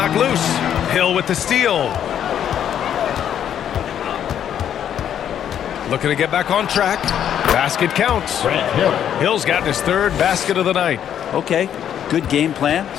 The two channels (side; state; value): right; quieter; 9.6 dB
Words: loose. Hill with the steal. Looking to get back on track. Basket counts. Hill's gotten his third basket of the night. Okay, good game plan.